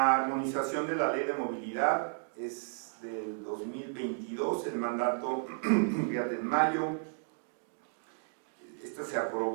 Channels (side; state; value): left; silent; digital silence